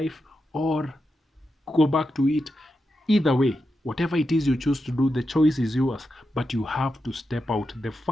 or go back to it. Either way, whatever it is you choose to do, the choice is yours, but you have to step out. The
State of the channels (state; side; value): normal; both; correlation 0.88